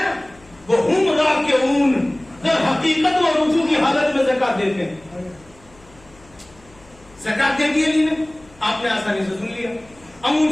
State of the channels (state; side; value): noise; left; hum, 27 dB below the sound